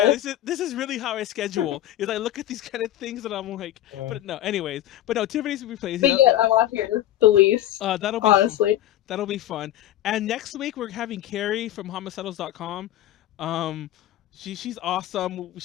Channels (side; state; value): right; quieter; 13.2 dB